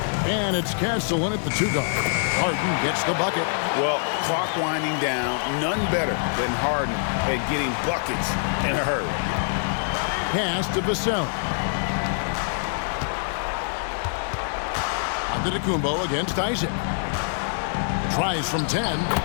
And it's Castleton at the 2-guard. Harden gets the bucket. Well, clock winding down, none better than Harden at getting buckets in a hurry. Pass to Vassell. Antetokounmpo against Isaac. Tries from 10,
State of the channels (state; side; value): silent; right; 62 dB below the other